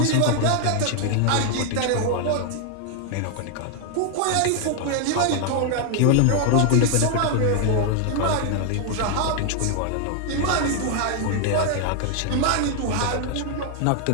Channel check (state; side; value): different; both; correlation 0.00